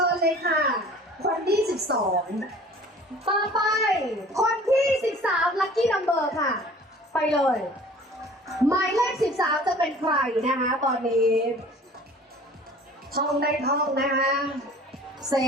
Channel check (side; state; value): both; normal; correlation 0.47